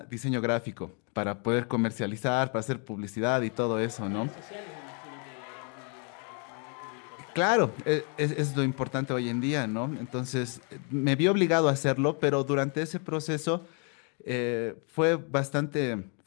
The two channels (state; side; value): quieter; right; 38.7 dB